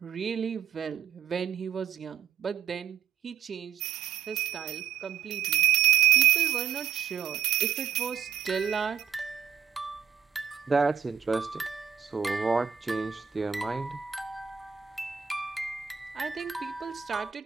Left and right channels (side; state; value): left; quieter; 8.3 dB